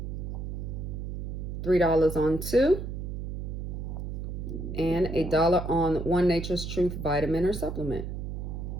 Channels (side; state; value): right; noise; hum, 5 dB below the sound